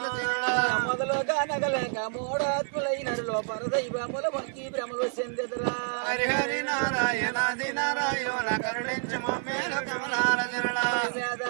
చరణ మొదలుగా నగలేక మోడాత్ములైనలో పరదైవముల మొక్కి భ్రమలు చెందెదురా హరి హరి నారాయణ ఆది నారాయణ కరుణించు మమ్మేలు కమలాల చరణ వేద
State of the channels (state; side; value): silent; left; 59 dB below the other